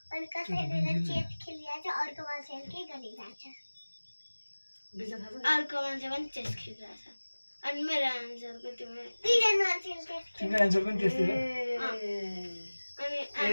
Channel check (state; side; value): inverted; both; correlation -1.00